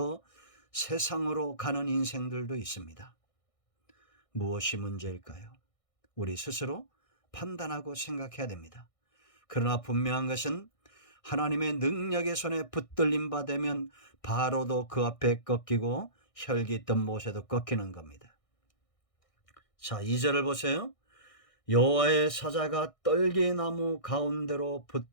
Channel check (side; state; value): right; late; 1.6 ms